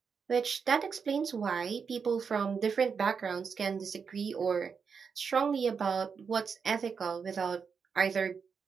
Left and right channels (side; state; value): left; quieter; 6.0 dB